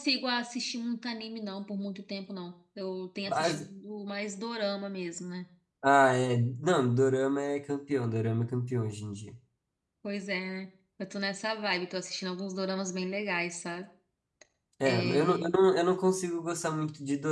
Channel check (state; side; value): identical; both; correlation 1.00